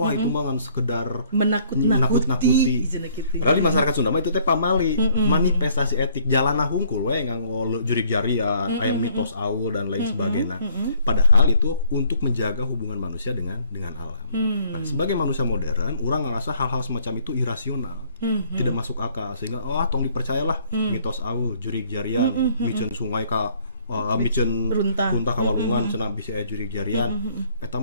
itu mah ngan sekedar menakut-nakuti. Padahal di masyarakat Sunda mah itu teh pamali, manifestasi etik jalana hungkul we nganggo jurig jarian, aya mitos aul dan lain sebagainya. Padahal itu untuk menjaga hubungan manusia dengan alam. Nah, sebagai manusia modern, orang ngerasa hal-hal semacam itu irasional, tidak masuk akal, sehingga tong dipercayalah mitos aul, jurig jarian, miceun sungai ka miceun runtah kawalungan cenah bisi aya jurig jarian, eta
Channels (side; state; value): both; inverted; correlation -0.62